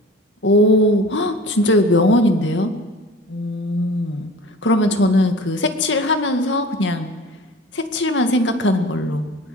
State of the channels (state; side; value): normal; both; correlation 0.41